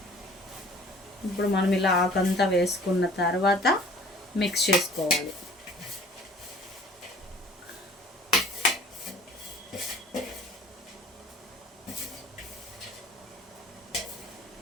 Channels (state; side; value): normal; both; correlation 0.50